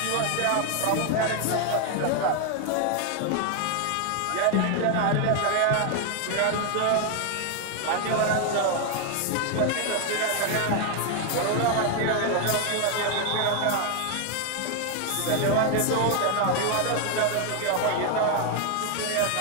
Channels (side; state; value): both; different; correlation 0.01